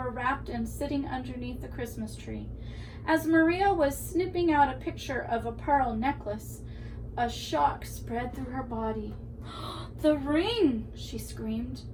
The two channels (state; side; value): identical; both; correlation 1.00